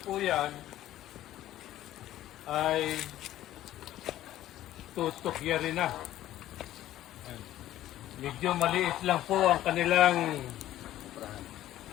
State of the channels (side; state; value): right; quieter; 13.6 dB